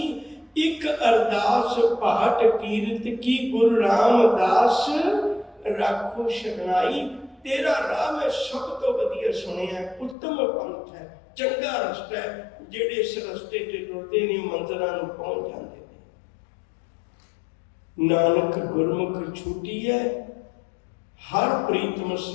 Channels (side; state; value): right; drops out; at 10.2 s